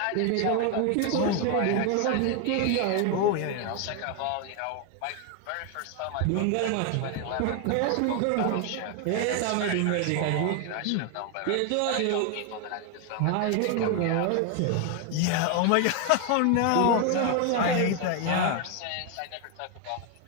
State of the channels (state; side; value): different; both; correlation 0.01